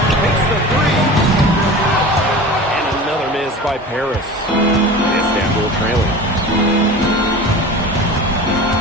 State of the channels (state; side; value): normal; both; correlation 0.35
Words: Takes the three. And another miss by Paris. Istanbul trailing.